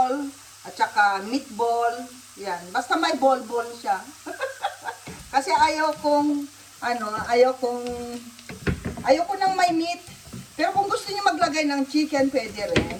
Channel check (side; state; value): both; identical; correlation 1.00